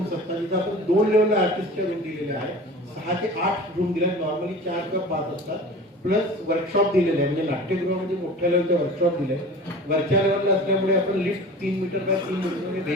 असतात. तिथं आपण 2 लेवलला आर्टिस्टच्या रूम दिलेल्या आहे. 6 ते 8 रूम दिल्या. नॉर्मली 4 किंवा 5 असतात. प्लस वर्कशॉप दिलेले आहे. म्हणजे नाट्यगृहामध्ये मोठ्या लेवलचे वर्कशॉप दिले. वरच्या लेवलला असल्यामुळे आपण लिफ्ट 3 मीटर बाय 3 मीटर म्हणजे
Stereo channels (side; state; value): both; normal; correlation 0.38